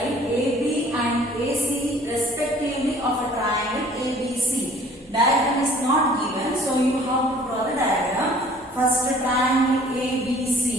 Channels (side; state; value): right; noise; hum, 30 dB below the sound